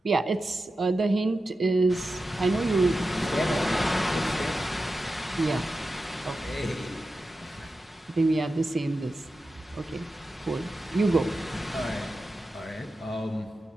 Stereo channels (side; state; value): both; normal; correlation 0.92